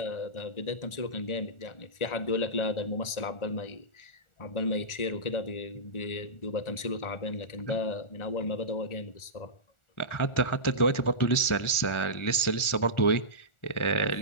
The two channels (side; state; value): right; late; 1.4 ms